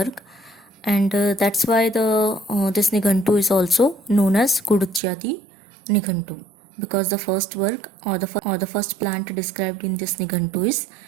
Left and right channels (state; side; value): drops out; left; at 5.0 s